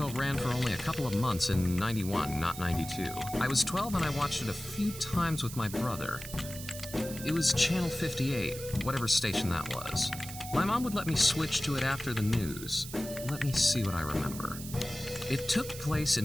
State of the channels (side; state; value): right; noise; hiss, 11 dB below the sound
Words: ran for only a couple of months in 91, not 92. I was 12 and I watched it a few times with my brother. It was Channel 58, whatever station that was. My mom would let me switch to it after the news. Let me see what I remember. It took place